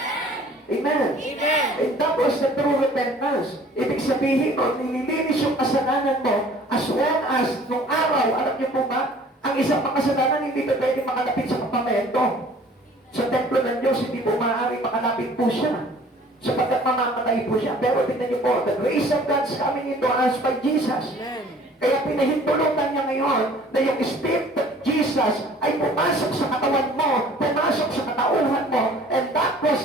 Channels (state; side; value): normal; both; correlation 0.51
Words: Amen. Amen. And that was the true repentance. Ibig sabihin mo, nililinis yung kasalanan mo as well as nung araw, alam niyo po ba, ang isang makasalanan hindi pa pwede makalapit sa kapamento. Sa templo ng Diyos, hindi po maaari makalapit po siya. Sapagkat mamamatay po siya. Pero tingnan niyo po, the grace of God's coming into us by Jesus. Amen. Kaya pinahintulutan niya ngayon na yung Spirit of Jesus ay pumasok sa katawan mo, pumasok sa katauhan mo, and that was